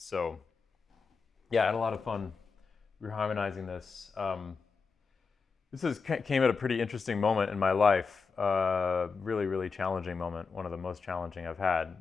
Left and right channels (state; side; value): quieter; right; 5.0 dB